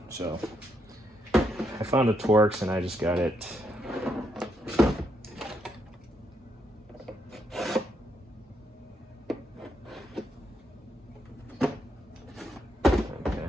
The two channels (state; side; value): normal; both; correlation 0.78